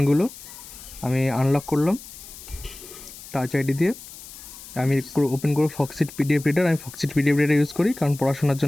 আমি আনলক করলাম টাচ আইডি দিয়ে। আমি ওপেন করব ফক্সিট পিডিএফ রিডার। আমি ফক্সিট পিডিএফ রিডার ইউজ করি কারণ পড়াশোনার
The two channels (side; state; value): left; noise; hiss, 16 dB below the sound